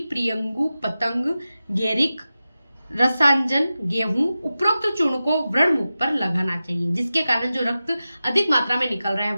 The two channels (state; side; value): inverted; both; correlation -0.94